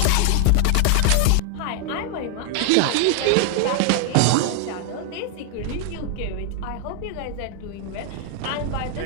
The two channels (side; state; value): both; different; correlation 0.00